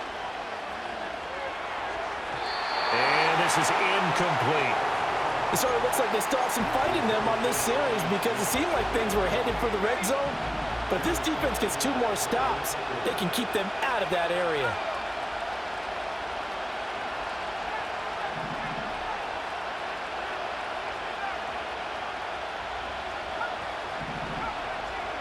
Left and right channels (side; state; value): both; identical; correlation 1.00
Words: And this is incomplete. It sort of looks like they still have some fight in them on this series because it seemed like things were headed for the red zone. But if this defense gets 2 more stops, they can keep them out of that area.